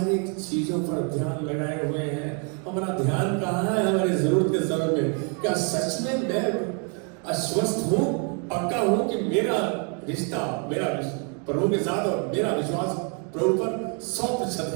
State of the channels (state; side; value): quieter; left; 38.4 dB